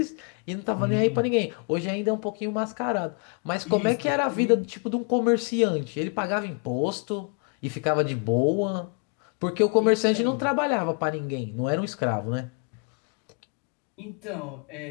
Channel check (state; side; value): quieter; right; 37.8 dB